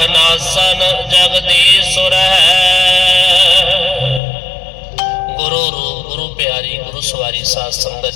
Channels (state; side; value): drops out; right; at 4.2 s